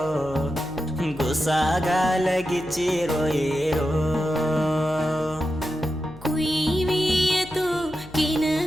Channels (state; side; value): noise; left; hum, 19 dB below the sound